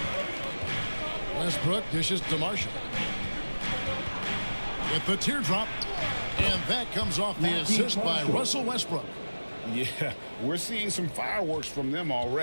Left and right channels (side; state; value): both; inverted; correlation -1.00